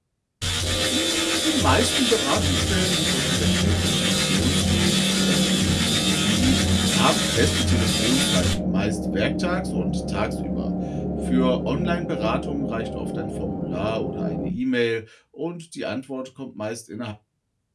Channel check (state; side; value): identical; both; correlation 1.00